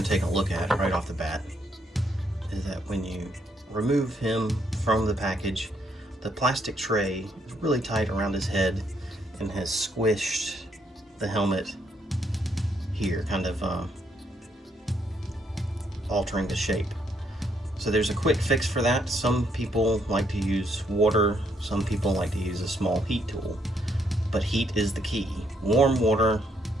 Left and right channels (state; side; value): normal; both; correlation 0.73